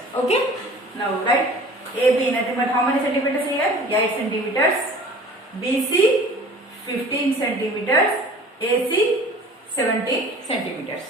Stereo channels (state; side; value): normal; both; correlation 0.45